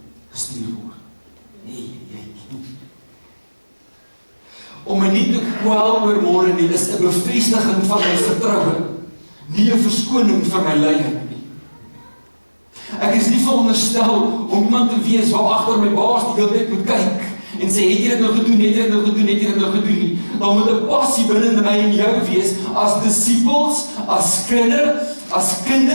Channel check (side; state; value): both; inverted; correlation -1.00